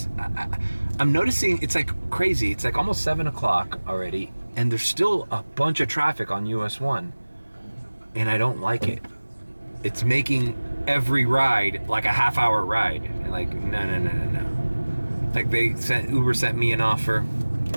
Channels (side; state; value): both; inverted; correlation -1.00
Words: I'm noticing it's like crazy. It's like almost 7 o'clock already, and there's still a bunch of traffic on US 1. And I don't like it. It's making every ride like a half-hour ride. And like, no. Like Uber sent me an offer